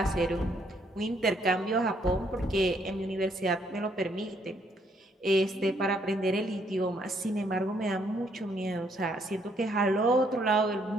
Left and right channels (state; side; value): normal; both; correlation 0.70